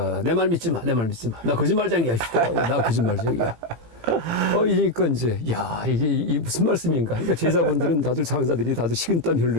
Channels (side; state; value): left; late; 18 ms